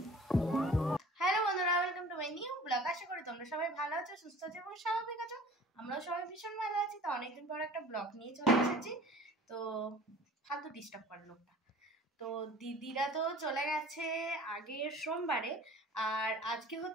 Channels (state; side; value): normal; both; correlation 0.46